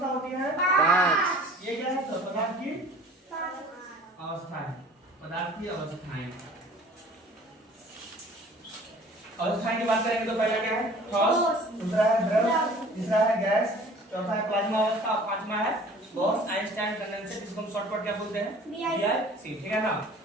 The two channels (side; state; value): both; normal; correlation 0.48